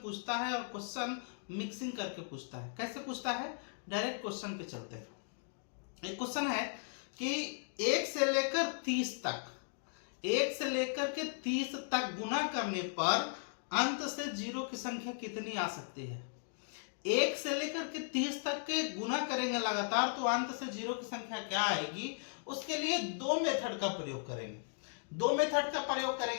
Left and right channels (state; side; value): silent; right; digital silence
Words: पूछता है और क्वेश्चन मिक्सिंग करके पूछता है। कैसे पूछता है? डायरेक्ट क्वेश्चन पे चलते हैं। एक क्वेश्चन है कि 1 से लेकर 30 तक, 1 से लेकर के 30 तक गुना करने पर अंत से जीरो की संख्या कितनी आ सकती है। 1 से लेकर के 30 तक के गुना करेंगे लगातार तो अंत से जीरो की संख्या क्या आएगी। उसके लिए दो मेथड का प्रयोग करेंगे। दो मेथड का प्रयोग